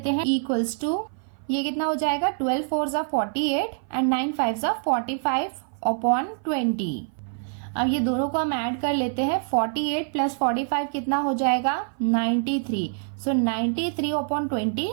हैं, इक्वल्स टू, ये कितना हो जाएगा 12 4 48 एंड 9 5 45/20। अब ये दोनों को हम ऐड कर लेते हैं, 48 प्लस 45 कितना हो जाएगा 93, सो 93/20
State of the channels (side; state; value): left; silent; 56 dB below the other